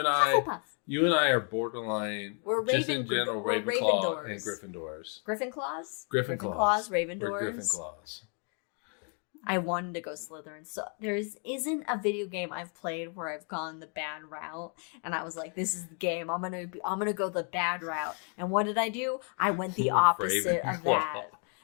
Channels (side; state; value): right; quieter; 38.1 dB